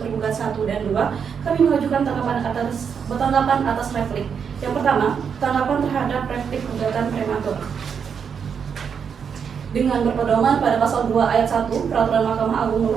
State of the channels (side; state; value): left; quieter; 6.9 dB